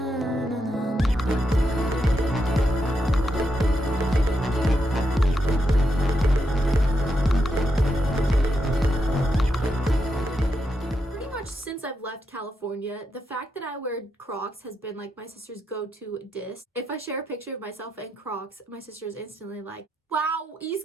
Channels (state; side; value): normal; both; correlation 0.83